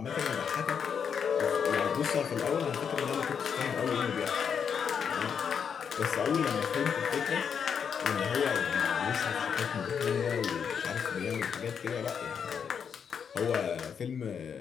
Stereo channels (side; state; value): right; quieter; 7.1 dB